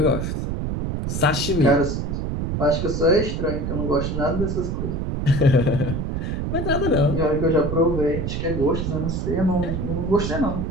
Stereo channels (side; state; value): right; noise; rumble, 2 dB below the sound